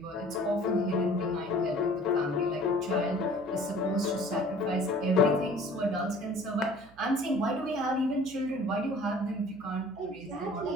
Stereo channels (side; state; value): right; noise; hum, 24 dB below the sound